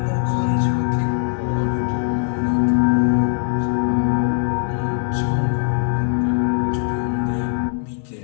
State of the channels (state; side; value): silent; right; 64 dB below the other